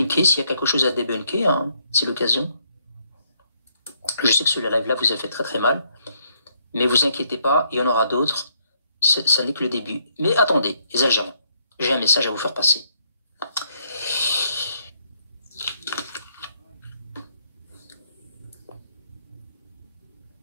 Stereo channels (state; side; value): inverted; both; correlation -0.72